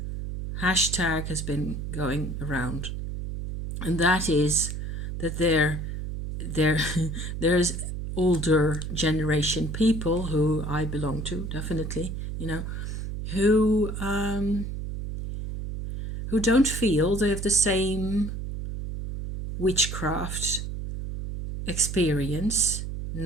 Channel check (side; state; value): right; noise; hum, 5 dB below the sound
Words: hashtag has been going around, and that is that there's older generation people who I belong to, definitely, who don't feel they have the same witchcraft experience